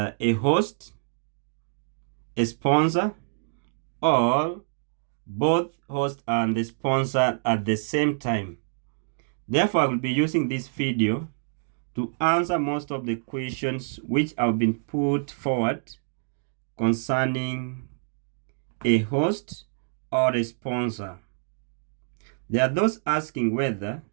host, a sponsor, or both host and the sponsor at the same time. Therefore, I will be using this video to answer most of the questions which have been put forward concerning a host or a sponsor. There are those asking whether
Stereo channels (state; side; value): silent; left; digital silence